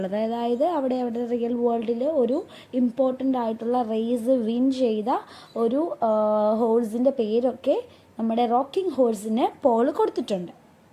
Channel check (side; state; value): both; identical; correlation 1.00